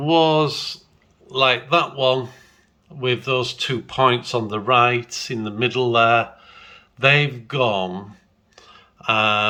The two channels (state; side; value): identical; both; correlation 1.00